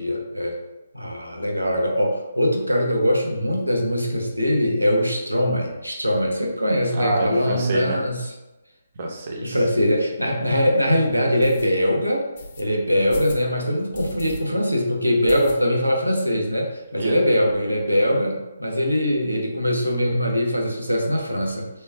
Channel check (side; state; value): both; inverted; correlation -0.85